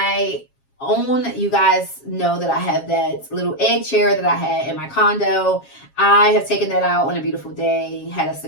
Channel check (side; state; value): right; late; 7.4 ms